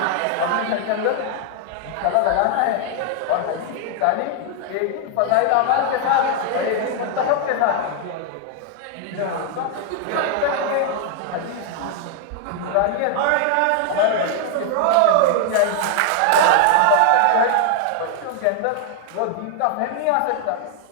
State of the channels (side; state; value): both; different; correlation 0.00